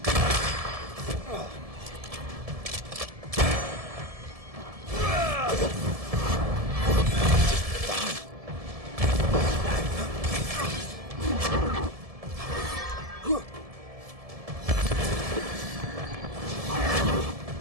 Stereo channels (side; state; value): left; late; 1.7 ms